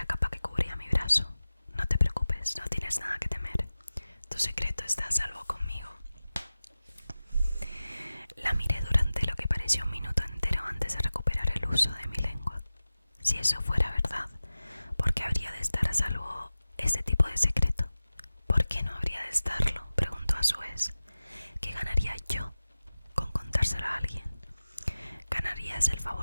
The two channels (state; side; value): inverted; both; correlation -0.96